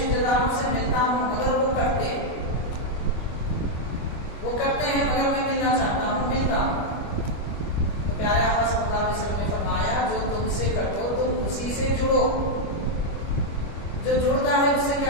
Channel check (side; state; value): right; late; 25 ms